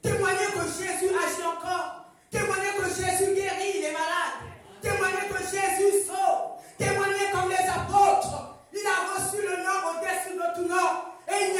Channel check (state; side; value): identical; both; correlation 1.00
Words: Témoigner que Jésus agit encore. Témoigner que Jésus guérit les malades. Témoigner que Jésus sauve. Témoigner comme les apôtres. Il a reçu le nom au-dessus de tout nom. Et il